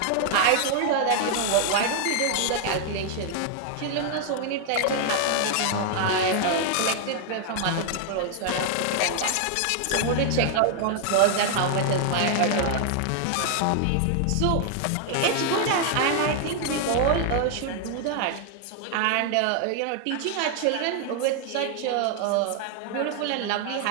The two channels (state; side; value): different; both; correlation 0.00